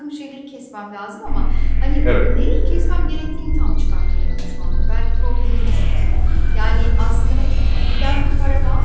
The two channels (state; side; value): identical; both; correlation 1.00